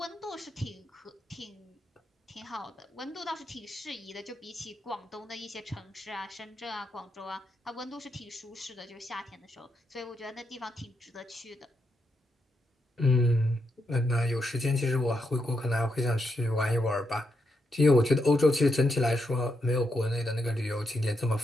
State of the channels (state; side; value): normal; both; correlation 0.82